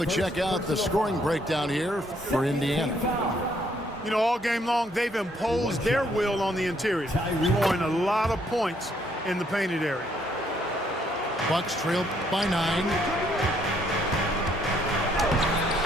check out the scoring breakdown here for Indiana. You know, all game long, they've imposed their will on the interior, scoring a lot of points in the painted area. Bucks trail by 9.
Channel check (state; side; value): normal; both; correlation 0.69